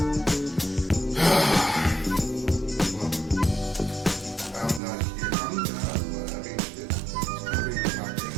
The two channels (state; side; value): drops out; left; at 4.8 s